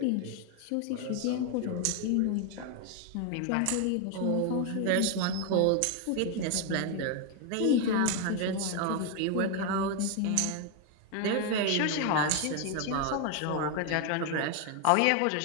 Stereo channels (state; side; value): different; both; correlation 0.01